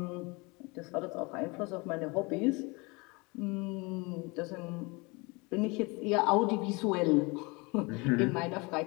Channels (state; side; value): quieter; right; 27.1 dB